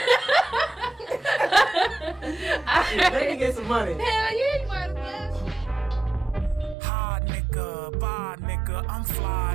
Let me get some money. Hell yeah, you might as well. Nigga, bye nigga, I'm fly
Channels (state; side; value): drops out; left; at 6.8 s